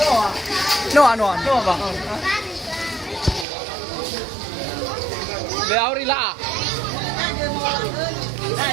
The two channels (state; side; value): drops out; left; at 3.5 s